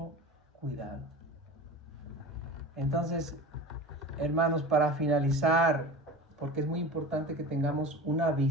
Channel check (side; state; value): both; normal; correlation 0.34